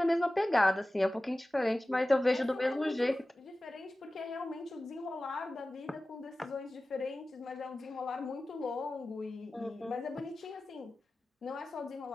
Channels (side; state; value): both; normal; correlation 0.96